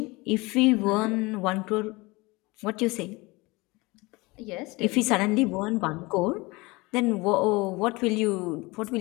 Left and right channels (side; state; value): right; quieter; 23.7 dB